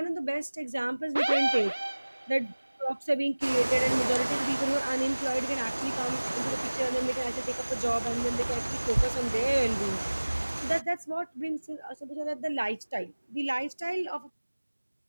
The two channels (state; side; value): inverted; both; correlation -1.00